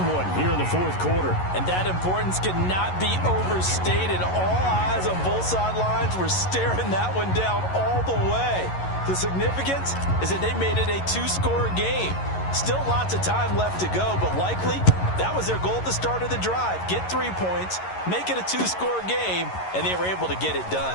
one here in the 4th quarter. And that importance cannot be overstated. All eyes on both sidelines were staring that one down all the way. The significance is that they made it a 2-score game. Still lots of time left to go, but likely that was their goal at the start of the drive. Get 3 points, make it a 2-score game, and they were able to get it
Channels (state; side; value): late; right; 11 ms